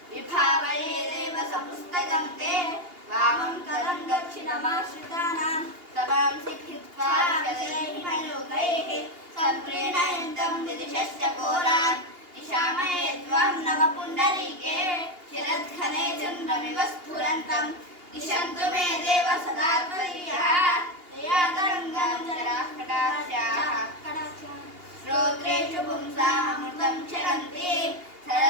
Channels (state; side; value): late; left; 2.8 ms